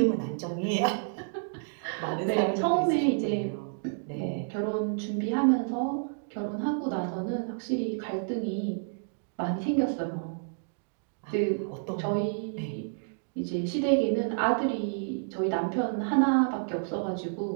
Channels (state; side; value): silent; left; digital silence